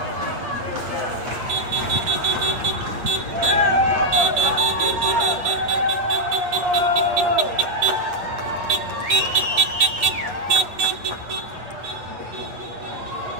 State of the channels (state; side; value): late; left; 8.7 ms